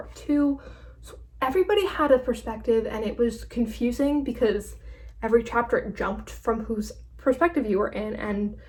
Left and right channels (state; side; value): identical; both; correlation 1.00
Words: 2. So everybody had a perspective, and it was confusing because every chapter it jumped from whose perspective you were in, and